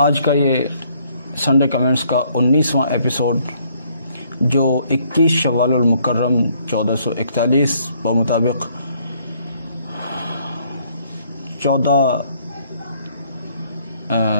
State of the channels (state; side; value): inverted; both; correlation -0.66